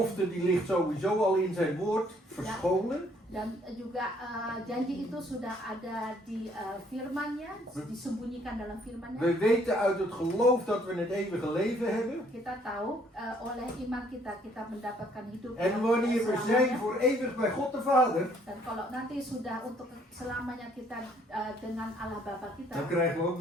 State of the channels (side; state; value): both; normal; correlation 0.64